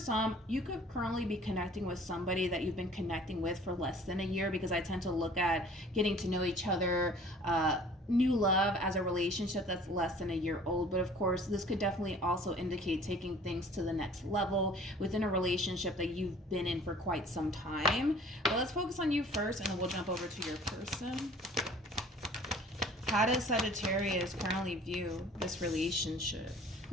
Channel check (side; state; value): both; normal; correlation 0.50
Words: you could currently be connecting with somebody that you've been connecting with for less than a year, because I tend to look at getting to know each other, new love as a relationship that's less than a year old. But of course, this could definitely also indicate taking things to the next level within a relationship that you've been in for quite some time. But let's focus on you first, and then we'll jump over to your person. How does Sagittarius currently view this relationship?